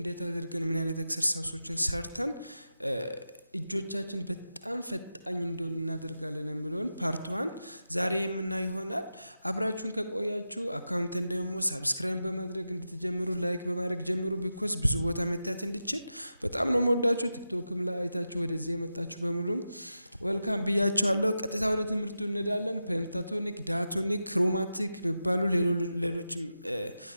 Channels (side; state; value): both; inverted; correlation -0.90